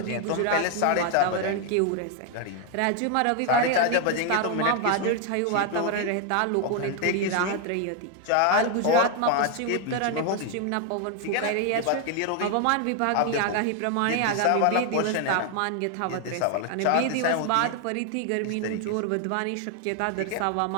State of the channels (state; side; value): different; both; correlation 0.01